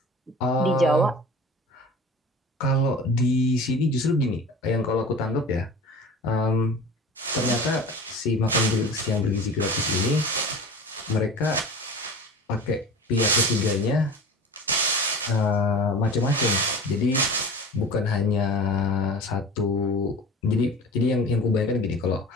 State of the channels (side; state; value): both; normal; correlation 0.38